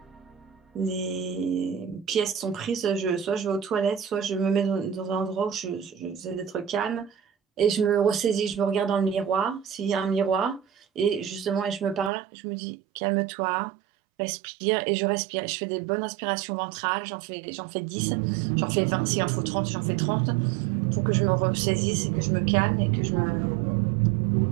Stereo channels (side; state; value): left; drops out; at 12.1 s